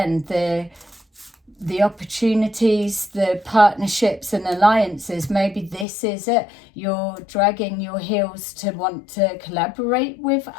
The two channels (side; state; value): right; drops out; at 5.9 s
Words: the opportunities, the partnerships and alliances. Maybe this is it. You're dragging your heels to want to collaborate with